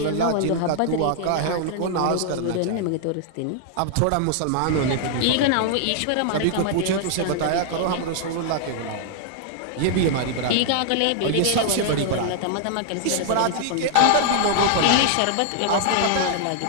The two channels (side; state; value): both; different; correlation -0.01